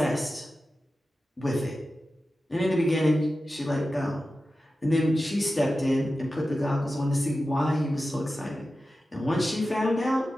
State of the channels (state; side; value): normal; both; correlation 0.93